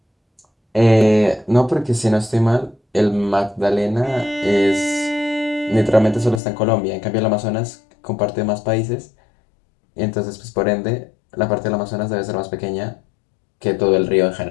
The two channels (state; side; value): drops out; right; at 6.4 s